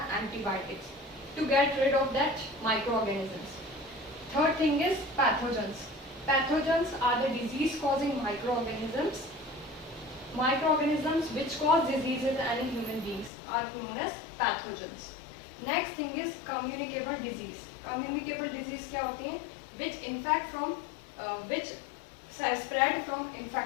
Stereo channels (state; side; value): drops out; right; at 13.3 s